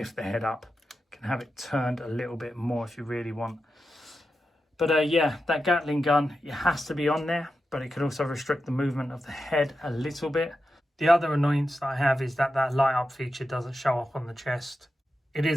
the head up. You can have it turned a little bit more if you really want. But yeah, that Gatling gun, it has to be on there, but it could also restrict the movement of the head a little bit. The other annoyance that I have is that that light up feature doesn't show up on the chest. It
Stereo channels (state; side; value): normal; both; correlation 0.90